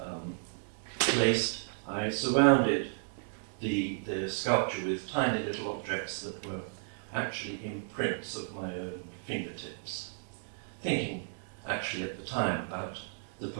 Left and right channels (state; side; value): silent; left; digital silence